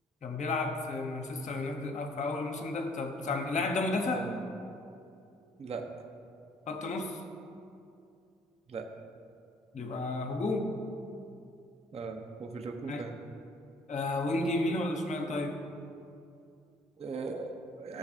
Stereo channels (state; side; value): normal; both; correlation 0.60